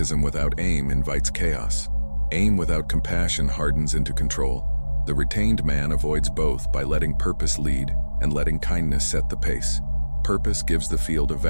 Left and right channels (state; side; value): inverted; both; correlation -1.00